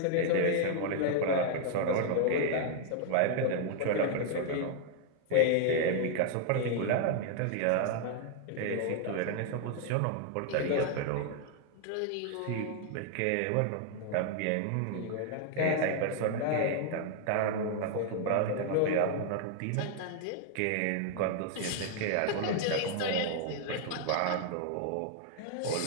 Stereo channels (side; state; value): both; different; correlation 0.00